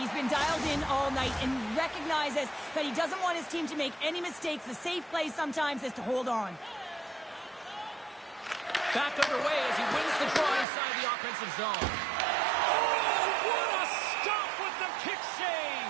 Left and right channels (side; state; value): left; drops out; at 10.7 s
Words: been dialed in all night and recognizes that he doesn't want his team to make any mistakes. The safe play sometimes is to hold on. Back underway as he wins the draw inside the offensive zone. Oh, what a stop with the kick save!